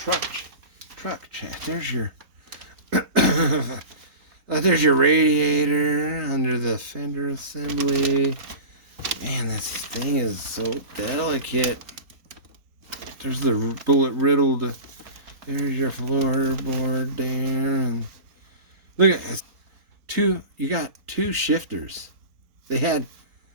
chassis. There's your radiator under the fender assembly. Man, this thing is so delicate. There's the bullet riddled. There's your floorboard there. And look at this. You got two shifters. They had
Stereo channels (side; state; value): left; late; 3.8 ms